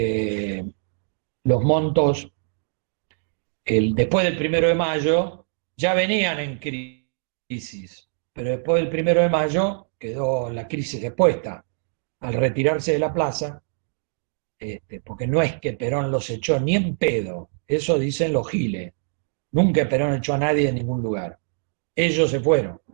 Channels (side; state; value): left; silent; digital silence